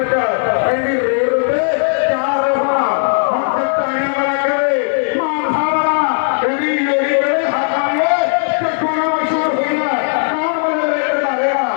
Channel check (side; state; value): right; silent; digital silence